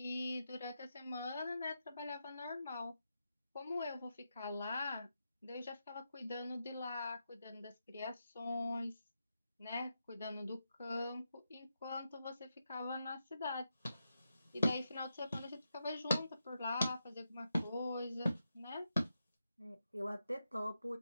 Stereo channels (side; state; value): both; inverted; correlation -0.86